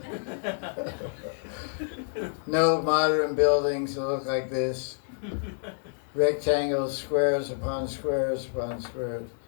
No modern buildings that look like this. Rectangles, squares upon squares upon squares.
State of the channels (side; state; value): right; silent; digital silence